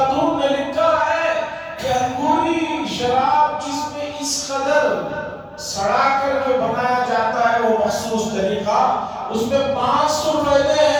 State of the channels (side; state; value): both; identical; correlation 1.00